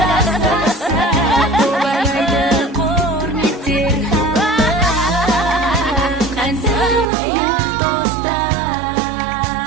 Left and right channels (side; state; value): left; drops out; at 7.1 s